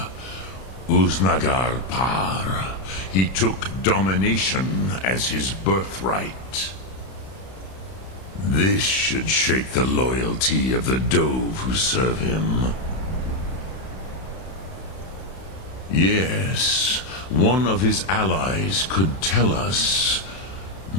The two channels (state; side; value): late; right; 31 ms